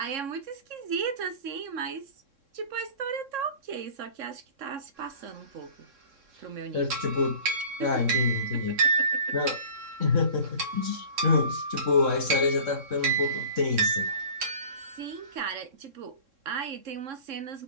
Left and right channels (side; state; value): left; late; 3.6 ms